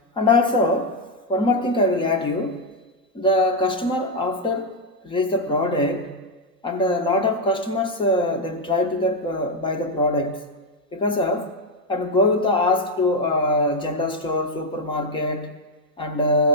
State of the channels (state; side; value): normal; both; correlation 0.04